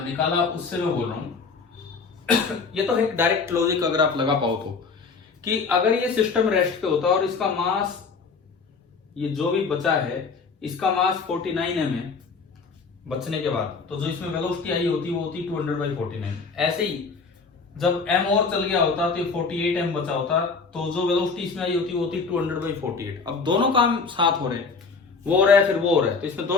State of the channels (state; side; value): quieter; right; 4.8 dB